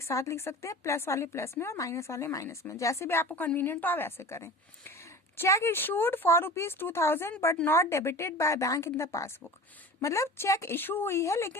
साथ लिख सकते हैं, प्लस वाले प्लस में और माइनस वाले माइनस में, जैसे भी आपको कन्वीनियंट हो आप ऐसे करें. Check issued for ₹2,000 but not debited by bank in the passbook. मतलब चेक इशू हुई है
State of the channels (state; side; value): normal; both; correlation 0.36